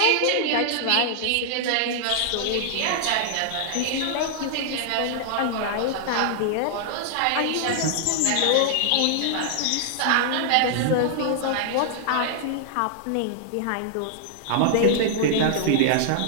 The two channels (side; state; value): both; different; correlation -0.01